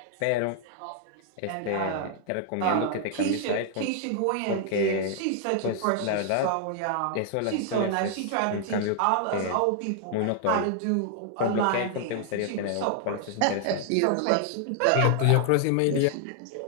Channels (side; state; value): both; different; correlation 0.00